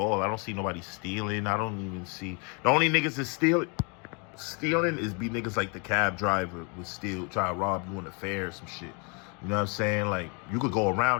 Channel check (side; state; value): right; quieter; 34.0 dB